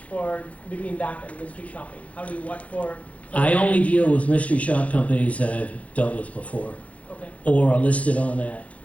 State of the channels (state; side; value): late; right; 0.066 ms